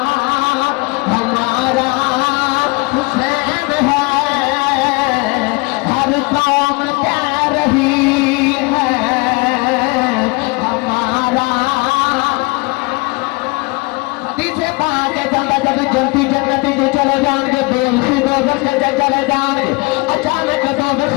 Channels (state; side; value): quieter; right; 26.4 dB